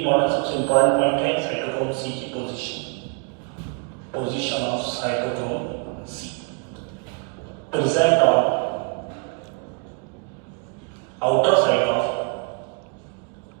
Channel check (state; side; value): quieter; left; 35.7 dB